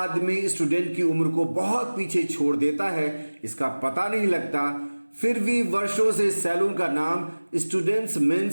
स्टूडेंट की उम्र को बहुत पीछे छोड़ देता है इसका पता नहीं लगता, फिर भी वर्षों से सैलून का नाम स्टूडेंट्स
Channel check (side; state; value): both; inverted; correlation -1.00